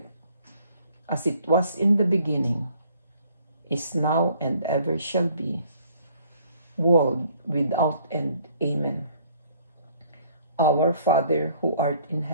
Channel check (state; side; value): inverted; both; correlation -0.60